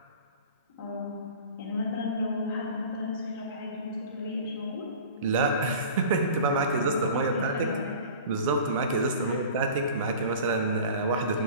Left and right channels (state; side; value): inverted; both; correlation -0.40